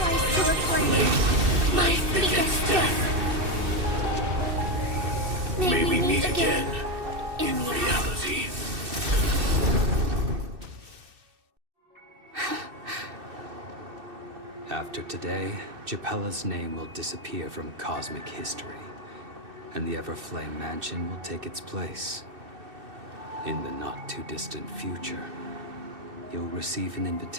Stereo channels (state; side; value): late; left; 2.6 ms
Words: to a flame, life begets death. May we meet again in reality. After today, Japella's name will disappear from cosmic history, and the Everflame Mansion will take its place. In the not-too-distant future, you'll receive an